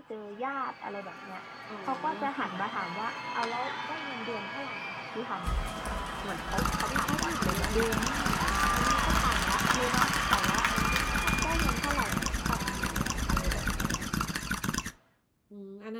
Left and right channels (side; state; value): both; identical; correlation 1.00